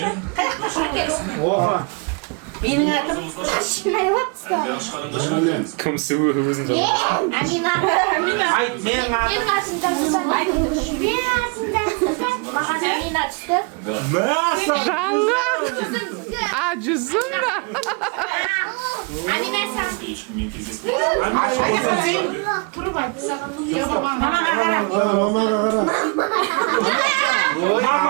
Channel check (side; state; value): left; quieter; 32.2 dB